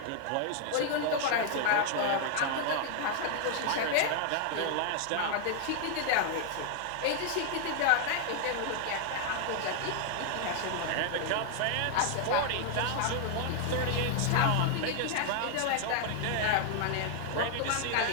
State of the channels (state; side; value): different; both; correlation 0.00